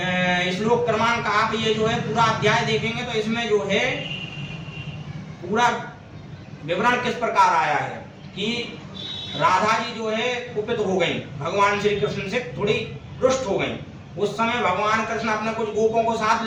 श्लोक क्रमांक आप ये जो है पूरा अध्याय देखेंगे तो इसमें जो है पूरा विवरण किस प्रकार आया है कि राधा जी जो है कुपित हो गई, भगवान श्री कृष्ण से थोड़ी रुष्ट हो गई। उस समय भगवान कृष्ण अपने कुछ गोपों को साथ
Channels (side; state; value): both; identical; correlation 1.00